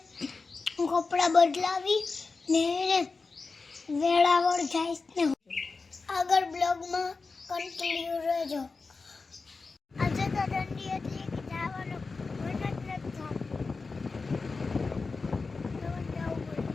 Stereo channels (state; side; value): quieter; right; 4.2 dB